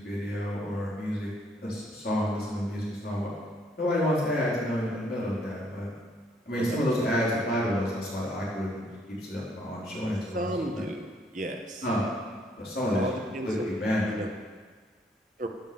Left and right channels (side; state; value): both; normal; correlation 0.68